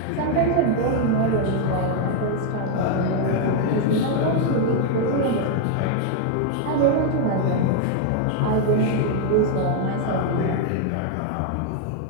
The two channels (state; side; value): different; both; correlation 0.00